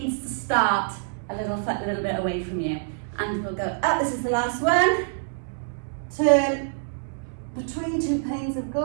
to start a little bit away from you. And we'll go up. This is the last one. Turn between 2 panes of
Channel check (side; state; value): left; silent; digital silence